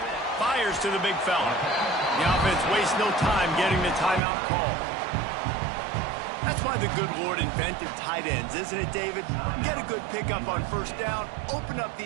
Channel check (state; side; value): drops out; left; at 4.2 s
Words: Fires to the big fella. The offense wastes no time getting the timeout call. That's why the good Lord invented tight ends, isn't it, David? Get a good pickup on first down, open up the